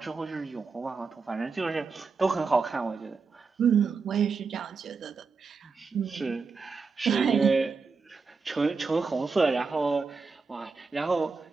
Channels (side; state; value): left; quieter; 4.7 dB